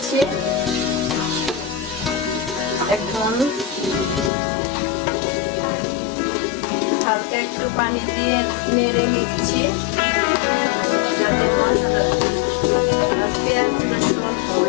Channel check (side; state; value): right; drops out; at 4.3 s